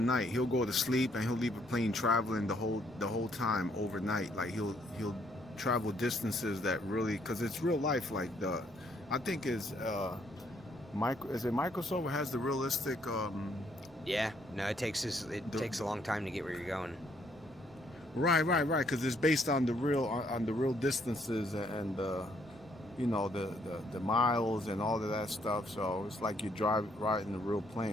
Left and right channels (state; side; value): normal; both; correlation 0.69